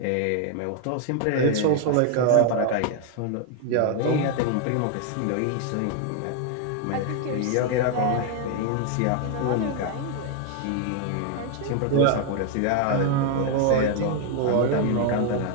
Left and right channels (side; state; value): both; different; correlation 0.01